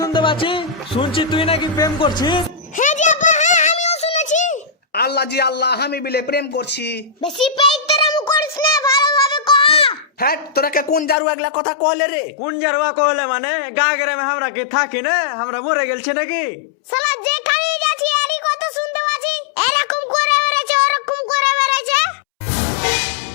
পাচ্ছি? শুনছি তুই নাকি প্রেম করছিস। হ্যাঁ জি আব্বা, হ্যাঁ আমিও শুনেছি। আল্লাহ জি আল্লাহ, আমি বিলে প্রেম করছি। বেশি পেইতারাম করিস না, ভালোভাবে কহ। হ্যাঁ, তোরাকে কোন জারু এগুলা কথা কইলে রে? কোন জারুয়া কহলে মানে গা গ্রামে আমরা কি থাকি না? আমরা মরে গেলছি নাকি? শালা যেখানে যাচ্ছি এরই কথা শুনতে পাচ্ছি, এরকম করে বেড়াচ্ছে ওরকম করে বেড়াচ্ছে।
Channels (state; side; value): drops out; right; at 11.2 s